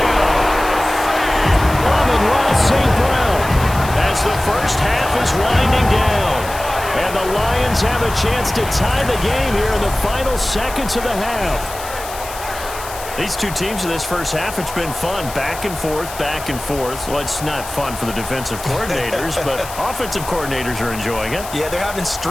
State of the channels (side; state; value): left; noise; hiss, 13 dB below the sound